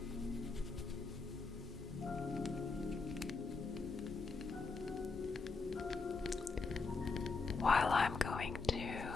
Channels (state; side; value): quieter; right; 4.2 dB